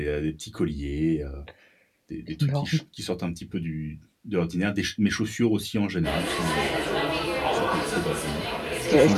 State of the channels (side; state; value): both; identical; correlation 1.00